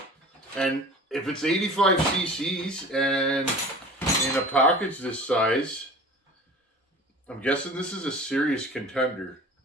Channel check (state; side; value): normal; both; correlation 0.41